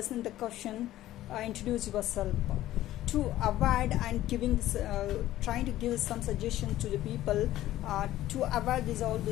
the question introduce yourself to avoid and trying to give some suggestion to the people to avoid all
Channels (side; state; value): right; quieter; 14.4 dB